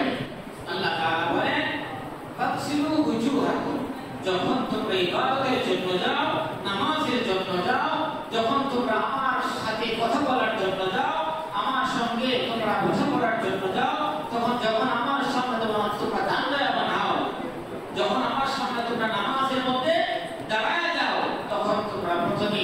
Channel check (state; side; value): identical; both; correlation 1.00